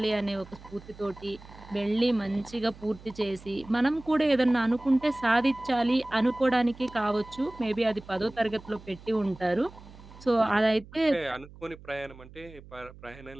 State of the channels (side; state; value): right; noise; hum, 19 dB below the sound